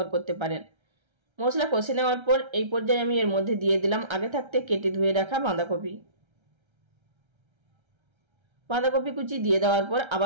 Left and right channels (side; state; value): left; late; 1.3 ms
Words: করতে পারেন। মশলা কষে নেওয়ার পর এই পর্যায়ে আমি এর মধ্যে দিয়ে দিলাম আগে থাকতে কেটে ধুয়ে রাখা বাঁধাকপি কুচি দিয়ে দেওয়ার পর